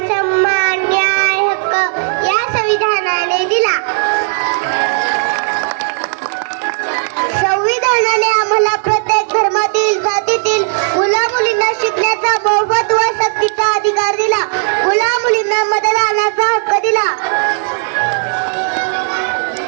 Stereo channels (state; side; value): silent; left; digital silence